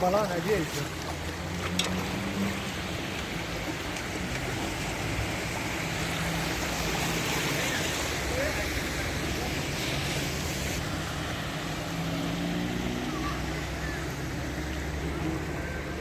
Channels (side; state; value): both; identical; correlation 1.00